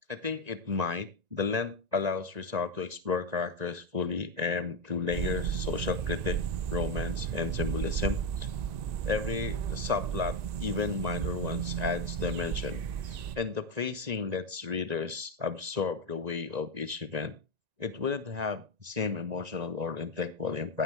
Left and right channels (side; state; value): left; late; 1.9 ms